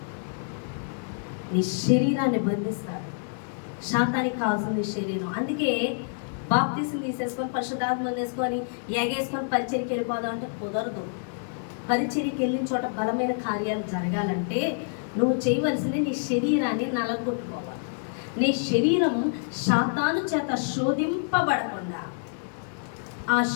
నీ శరీరాన్ని బంధిస్తాడు. శాతానికి కావాల్సింది శరీరం. అందుకే బాప్తిసం తీసేసుకొని పరిశుద్ధాత్మ వేసుకొని ఎగేసుకొని పరిచర్యకి వెళ్ళిపోదాం అంటే కుదరదు. పరిచర్యకి వెళ్ళిన చోట బలమైన కార్యాలు జరగాలంటే నువ్వు చేయవలసింది నీ శరీరాన్ని నలగొట్టుకోవాలి. నీ శరీరం శాతాను చేత శోధింపబడకుండా ఆ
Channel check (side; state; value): right; silent; digital silence